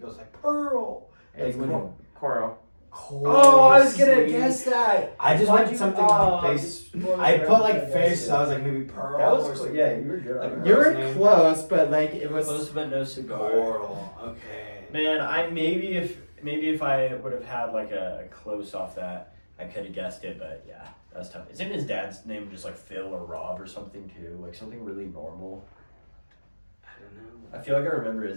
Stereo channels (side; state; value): both; inverted; correlation -1.00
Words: like Pearl. It's when Coral. Oh, I was gonna guess that. I just Why'd went you- something oh, based. you I put like spoiled fish, it. so I was like maybe Pearl. That was or cool. something. Yeah, you were good. Like on You that. were name? close, but like it was. Close but no cigar. Coral. Okay. Man, I maybe if I would have had like a close off that, I could have guessed it. But yeah, that's tough. Isn't his dad's name just like Phil or Rob or something too? Like something really normal. I don't know. I feel like I remember